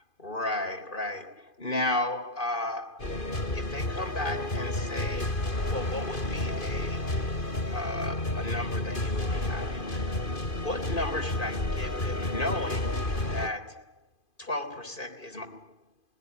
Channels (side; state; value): right; late; 2.5 ms